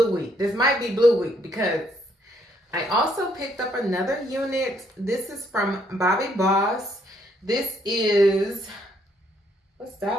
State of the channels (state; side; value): normal; both; correlation 0.70